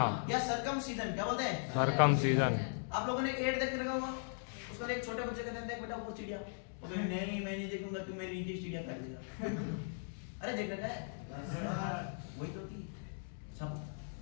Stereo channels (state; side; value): silent; right; digital silence